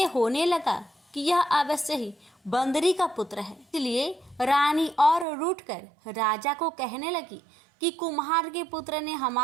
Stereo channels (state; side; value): drops out; left; at 5.2 s